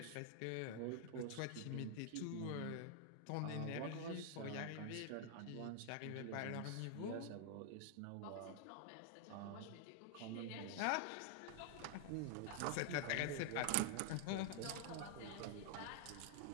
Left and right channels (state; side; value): different; both; correlation 0.00